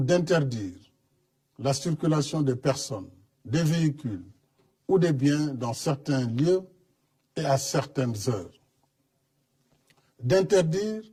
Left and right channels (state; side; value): identical; both; correlation 1.00